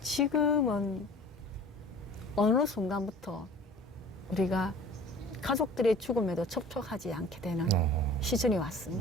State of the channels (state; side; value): normal; both; correlation 0.45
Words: 지금은 어느 순간부터 우리가 가족들의 죽음에도 접촉하지 않게 되는 시즌이